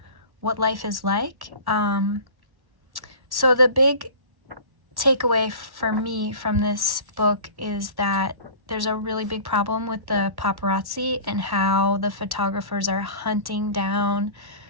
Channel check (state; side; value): late; left; 1.1 ms